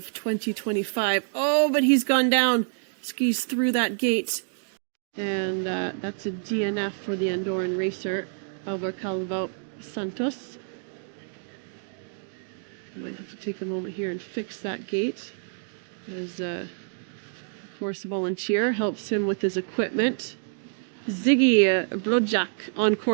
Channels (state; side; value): silent; left; digital silence